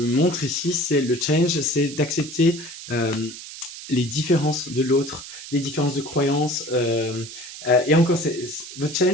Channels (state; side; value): noise; right; hiss, 13 dB below the sound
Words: montre ici, c'est le change, c'est d'accepter les différences de l'autre, les différences de croyances. Et encore, votre